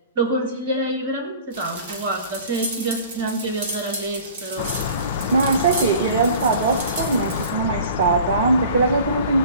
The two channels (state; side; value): inverted; both; correlation -0.44